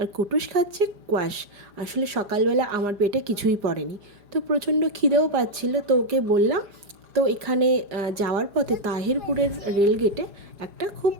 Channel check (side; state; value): left; late; 5.0 ms